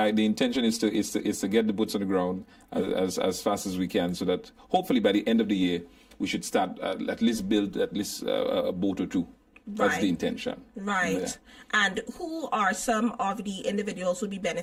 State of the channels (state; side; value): identical; both; correlation 1.00